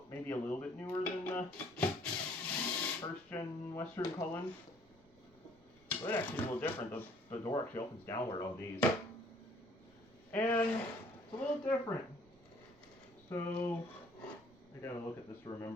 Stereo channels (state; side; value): noise; right; rumble, 28 dB below the sound